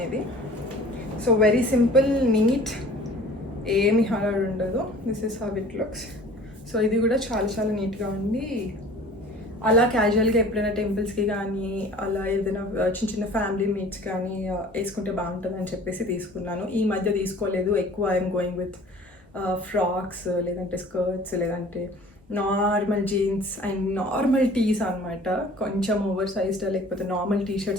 సో వెరీ సింపుల్, నీట్, ఏమి హడాడు ఉండదు. This is how it looks. So ఇది కూడా చాలా చాలా నీట్గా ఉంది. అలా క్యాజువల్గా ఎప్పుడైనా టెంపుల్స్కి కానీ అలా ఏదైనా చిన్న చిన్న ఫ్యామిలీ మీట్స్ కానీ వేసుకుంటే బాగుంటుంది అని చెప్పేసి తీసుకున్నాను. ఈ మధ్య తీసుకోలేదు ఎక్కువ. ఐఎమ్ గోయింగ్ విత్ ఫ్రాక్స్, లేదంటే స్కర్ట్స్, లేదంటే normal jeans and normal tees అనమాట. కొంచెం ఓవర్ సైజ్డ్ లేకపోతే నార్మల్ టీ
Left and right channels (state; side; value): normal; both; correlation 0.47